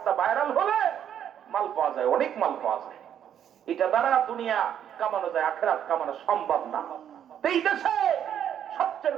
ভাইরাল হলে মাল পাওয়া যায়, অনেক মাল পাওয়া যায়। এটা দ্বারা দুনিয়া কামানো যায়, আখিরাত কামানো সম্ভব না। এই দেশে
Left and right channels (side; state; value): left; quieter; 9.5 dB